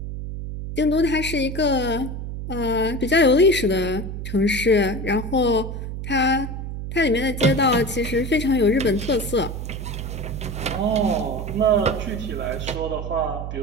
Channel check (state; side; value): noise; right; hum, 6 dB below the sound